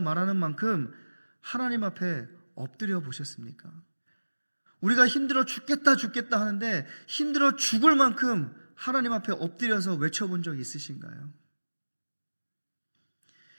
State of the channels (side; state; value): both; inverted; correlation -1.00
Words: 말하는 만큼 하나님 앞에 엎드려 보셨습니까? 우리가 힘들어 죽겠다 하는데 힘들어 죽을 만큼 하나님 앞에 엎드려서 외쳐본 적 있으신가요?